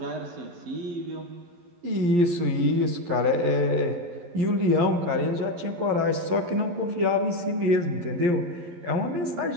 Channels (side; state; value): left; late; 11 ms